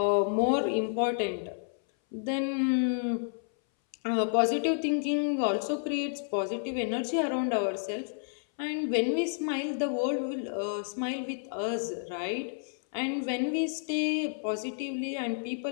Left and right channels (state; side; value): silent; right; 58 dB below the other